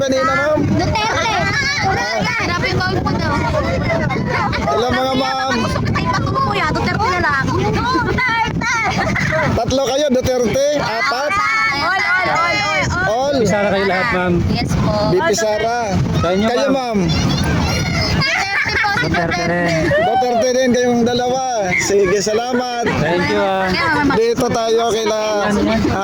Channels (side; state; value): both; identical; correlation 1.00